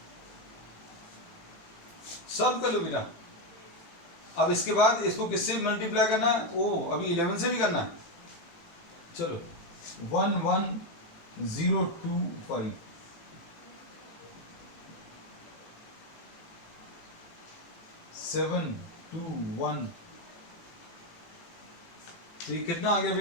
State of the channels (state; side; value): late; right; 18 ms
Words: सॉल्व कर लो बेटा। अब इसके बाद इसको किससे मल्टीप्लाई करना है, ओ अभी 11 से भी करना है। चलो 11025 721, तो ये कितना आ गया